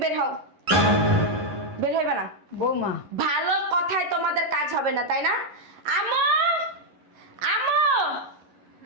বের হও। বের হইবে না। বৌমা ভালো কথায় তোমাদের কাজ হবে না, তাই না? আমো আমো,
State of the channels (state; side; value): late; left; 11 ms